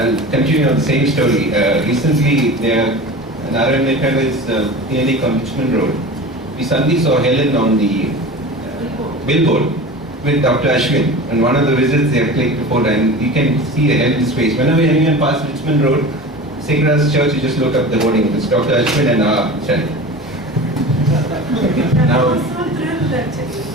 continue on the same story. Recently, Narayan is nearly Richmond Road. We suddenly saw Helen on the billboard with Dr. Ashwin. And one of the visits they have clicked before, and you can see Helen's face. Whenever anyone passes Richmond Road, Sacred Church, you just look up the hoarding. It's Dr. Ashwin and our child. Now, I was so thrilled actually.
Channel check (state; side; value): normal; both; correlation 0.34